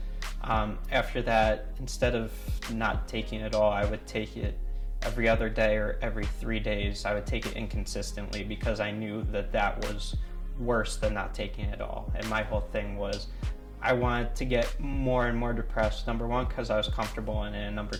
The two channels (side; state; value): both; identical; correlation 1.00